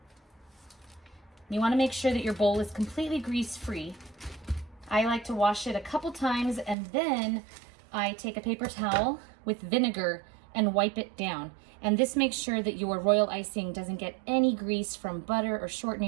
You want to make sure that your bowl is completely grease-free. I like to wash it a couple times, and then I take a paper towel with vinegar and wipe it down. And this makes sure that your royal icing doesn't get any grease from butter or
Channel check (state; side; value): drops out; left; at 6.8 s